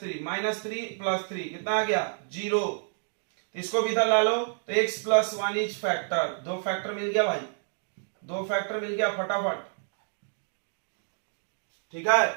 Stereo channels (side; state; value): left; silent; digital silence